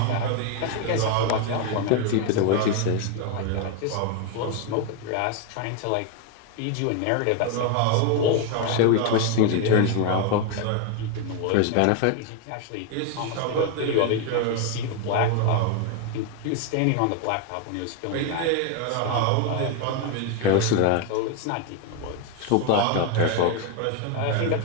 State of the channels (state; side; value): different; both; correlation 0.01